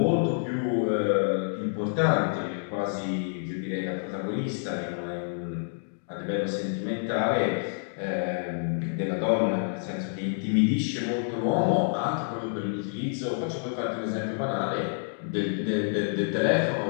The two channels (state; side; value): silent; right; digital silence